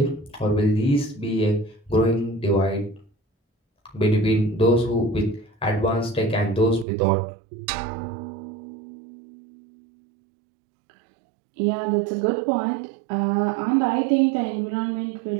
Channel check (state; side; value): drops out; left; at 6.9 s